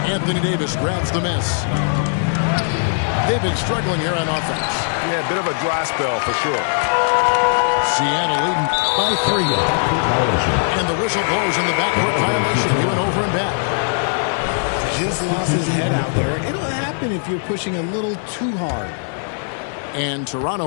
Anthony Davis grabs the miss. They've been struggling here on offense. Yeah, a bit of a dry spell for sure. Seattle leading by 3. And the whistle blows on the backcourt violation. He went over and back. Just lost his head out there. It'll happen if you're pushing a little too hard. And Toronto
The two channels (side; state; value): right; silent; digital silence